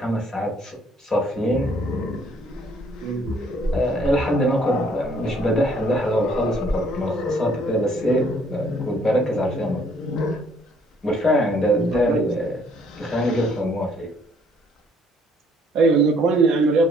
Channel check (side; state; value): both; normal; correlation 0.63